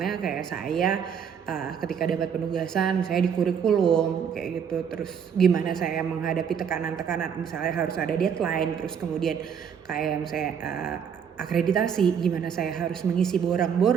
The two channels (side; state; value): left; quieter; 7.6 dB